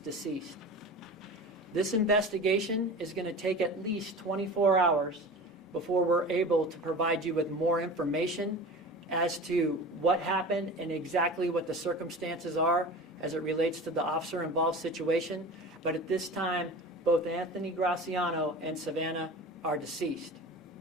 deceased. This investigation is going to take at least 24 hours before we're able to provide you with more information as to what happened and exactly what the circumstances are as it relates to the officer-involved situation. But at this time, both Anthony Graciano and Savannah are deceased.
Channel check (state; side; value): normal; both; correlation 0.34